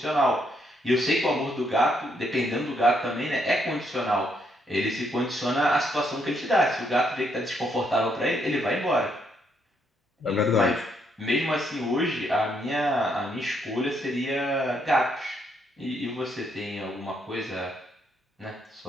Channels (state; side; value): normal; both; correlation 0.74